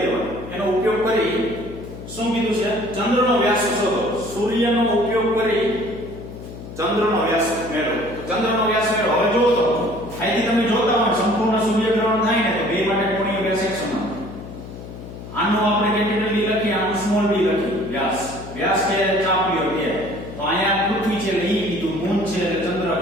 લેવાની. એનો ઉપયોગ કરી શું કીધું છે? ચંદ્રનો વ્યાસ શોધો. સૂર્યનો ઉપયોગ કરી ચંદ્રનો વ્યાસ મેળવો. ચંદ્રનો વ્યાસ મેળવો. હવે જો તો અહીંથી તમે જોતા હોય સંપૂર્ણ સૂર્યગ્રહણ થાય ને તો બે માટે કોણીય વ્યાસ એક સમાન. આનો આપણે કેપિટલ ડી લખીએ, આનું સ્મોલ ડી લખીએ. વ્યાસ કે ચાપ લ્યો કે તો અહીંયા પૃથ્વી છે એટલે ઈ કીધું, મૂન છે એટલે ચંદ્ર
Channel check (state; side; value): noise; left; hum, 12 dB below the sound